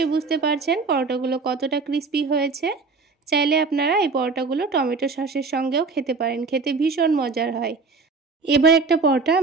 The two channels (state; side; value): quieter; left; 4.4 dB